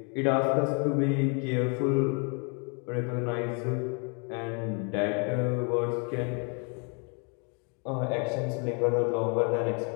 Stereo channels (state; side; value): quieter; right; 36.7 dB